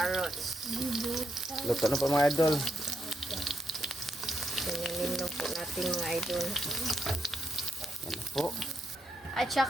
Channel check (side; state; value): both; normal; correlation 0.81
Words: Luto na po mga idol. Ganyanin na po natin mga idol. Yan na po. At